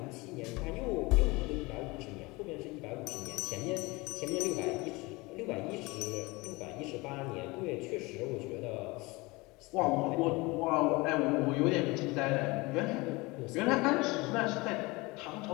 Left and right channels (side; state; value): right; quieter; 23.9 dB